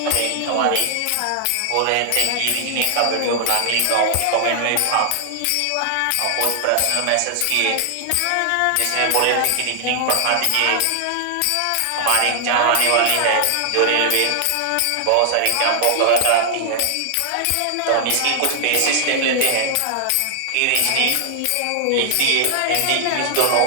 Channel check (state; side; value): different; both; correlation -0.01